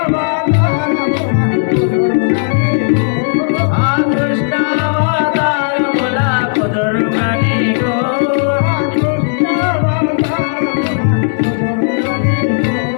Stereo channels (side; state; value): right; silent; 71 dB below the other